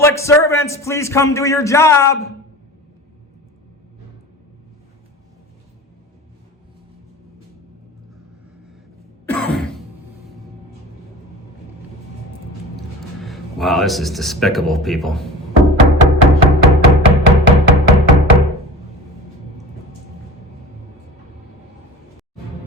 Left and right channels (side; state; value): both; normal; correlation 0.36